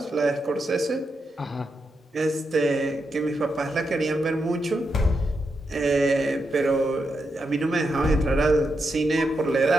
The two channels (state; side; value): normal; both; correlation 0.85